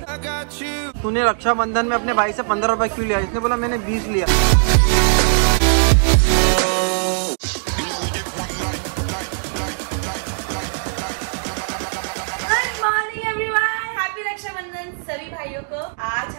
तूने रक्षाबंधन में अपने भाई से 15 रुपए क्यों लिया? इसने बोला मैंने 20 लिया। सभी भाइयों को आज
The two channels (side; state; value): left; silent; digital silence